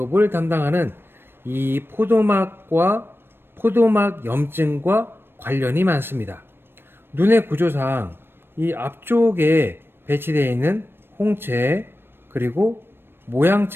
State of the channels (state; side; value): late; left; 0.10 ms